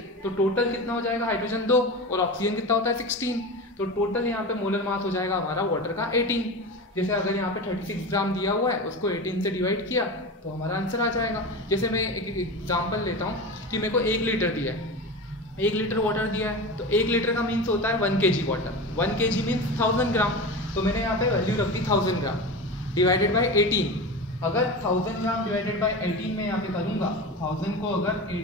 तो टोटल कितना हो जाएगा? हाइड्रोजन 2 और ऑक्सीजन कितना होता है 16, तो टोटल यहाँ पे मोलर मास हो जाएगा हमारा वाटर का 18। जैसे अगर यहाँ पे 36 ग्राम दिया हुआ है, उसको 18 से डिवाइड किया तो हमारा आंसर आ जाएगा। जैसे मैं एक एग्जाम्पल लेता हूँ कि मेरे को 1 लीटर दिया है, 1 लीटर वाटर दिया है, तो 1 लीटर का मीन्स होता है 1 kg वाटर। 1 kg मीन्स 1000 ग्राम, तो मैंने यहाँ पे वैल्यू रख दी 1000 ग्राम डिवाइडेड बाई 18। अगर 1000 ग्राम डिवाइडेड बाई 18 में यहाँ पे करूँगा, 1000 को अगर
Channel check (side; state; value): both; normal; correlation 0.27